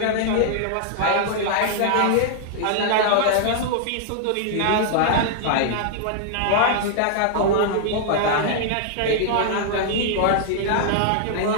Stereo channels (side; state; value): both; different; correlation -0.01